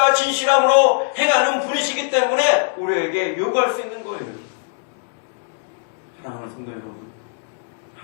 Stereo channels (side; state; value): right; silent; digital silence